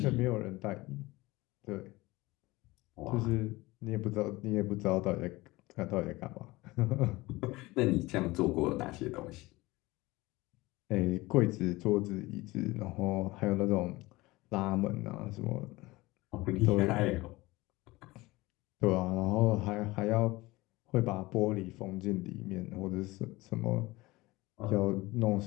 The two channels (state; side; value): quieter; right; 20.7 dB